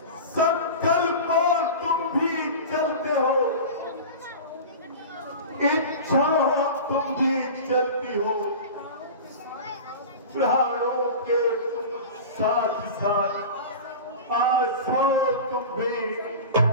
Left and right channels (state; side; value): inverted; both; correlation -0.32